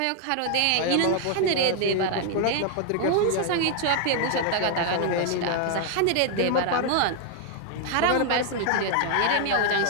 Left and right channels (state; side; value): different; both; correlation 0.00